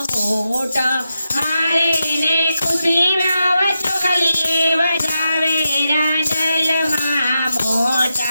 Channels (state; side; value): inverted; both; correlation -0.88